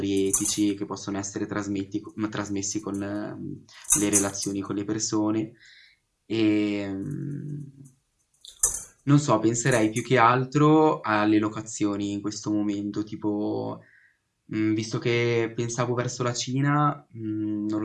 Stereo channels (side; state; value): both; identical; correlation 1.00